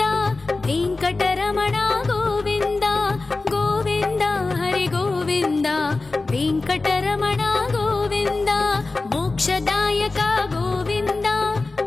ವೆಂಕಟರಮಣ ಗೋವಿಂದ ಗೋವಿಂದ ಹರಿ ಗೋವಿಂದ ವೆಂಕಟರಮಣ ಗೋವಿಂದ ಮೋಕ್ಷದಾಯಕ ಗೋವಿಂದ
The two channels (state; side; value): quieter; right; 3.5 dB